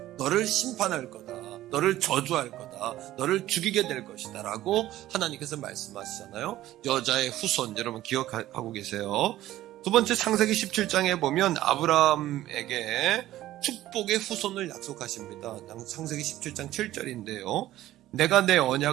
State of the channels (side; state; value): left; quieter; 14.6 dB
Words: 너를 심판할 거다. 너를 저주할 거다. 너를 죽이게 될 것이다 라고 하나님께서 말씀하시잖아요. 여자의 후손 여러분 기억하고 계세요. 두 번째 창세기 17장에 보면 아브라함에게 축복의 후손을 약속하십니다. 창세기 17장 7절인데요. 내가 내